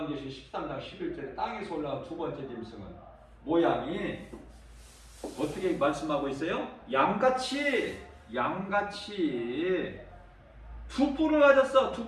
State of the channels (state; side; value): identical; both; correlation 1.00